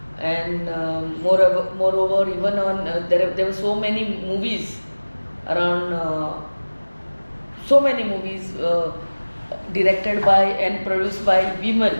and moreover, even on there were so many movies around. So many movies directed by and produced by women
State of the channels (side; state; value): both; inverted; correlation -1.00